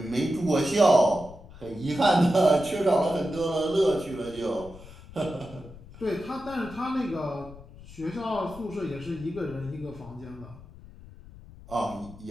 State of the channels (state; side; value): noise; left; rumble, 18 dB below the sound